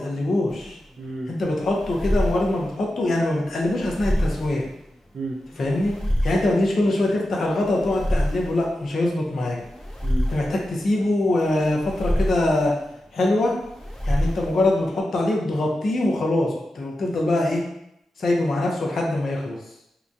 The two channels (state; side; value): normal; both; correlation 0.91